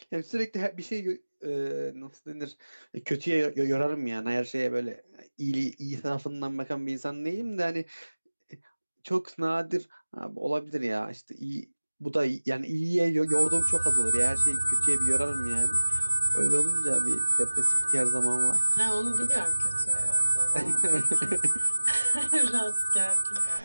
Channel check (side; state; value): both; inverted; correlation -1.00